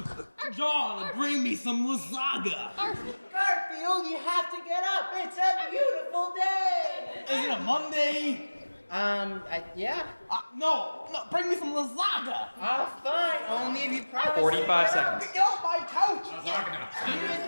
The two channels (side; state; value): both; inverted; correlation -1.00